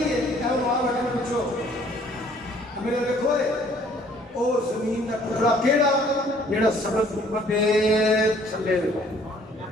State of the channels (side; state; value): both; normal; correlation 0.58